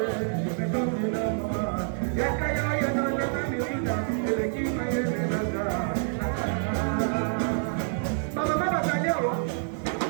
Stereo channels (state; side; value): silent; left; 60 dB below the other